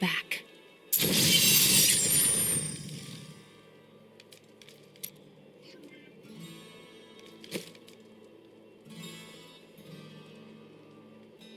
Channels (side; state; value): both; identical; correlation 1.00